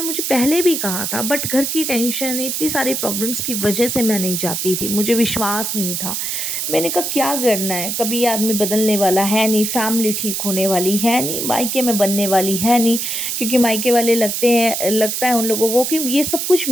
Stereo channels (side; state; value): right; noise; hiss, 2 dB below the sound